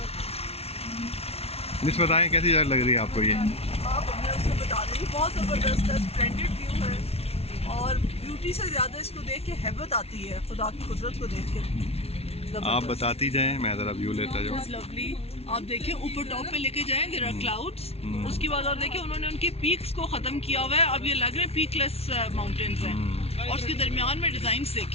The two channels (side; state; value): right; late; 0.30 ms